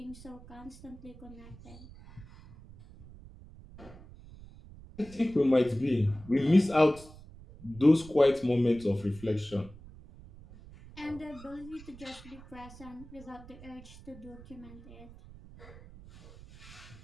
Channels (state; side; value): noise; right; rumble, 19 dB below the sound